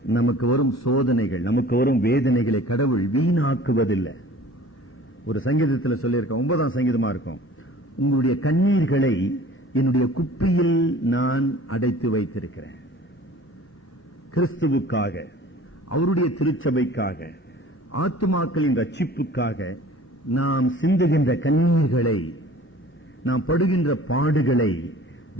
நமக்கு வரும் சோதனைகள், நமக்கு வரும் வேதனைகளை கடவுள் வீணாக்குவதில்லை. ஒரு சங்கீதத்தில் சொல்லியிருக்க 9ஆம் சங்கீதமா இருக்கும், உங்களுடைய கண்ணீர்களை என்னுடைய குப்பியில் நான் அடைத்து வைத்திருக்கிறேன். கிறிஸ்துவுக்காக, அவருடைய திருச்சபைக்காக, ஆத்துமாக்களின் ரட்சிப்புக்காக நாம் சிந்துகின்ற கண்ணீர்களை, நாம் படுகின்ற பாடுகளை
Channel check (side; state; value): both; normal; correlation 0.47